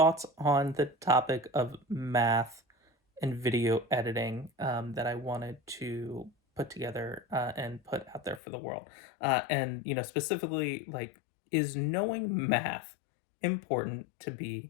on the topic of math and video editing that I wanted to put together and put out there for the world. And specifically, like, is knowing math important to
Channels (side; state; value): right; drops out; at 8.4 s